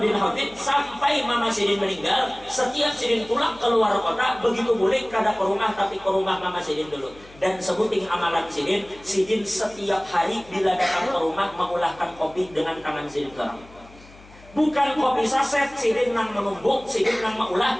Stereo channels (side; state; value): left; noise; hum, 23 dB below the sound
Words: bin Hafid sampai Mama Sidin meninggal, setiap Sidin pulang keluar kota, begitu boleh kada ke rumah, tapi ke rumah Mama Sidin dulu. Dan sebuting amalan Sidin setiap hari bila datang ke rumah mengulahkan kopi dengan tangan Sidin seorang. Bukan kopi saset, Sidin nang menumbuk, Sidin nang maulah,